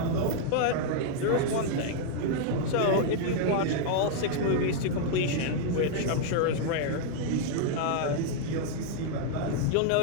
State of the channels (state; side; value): different; both; correlation -0.01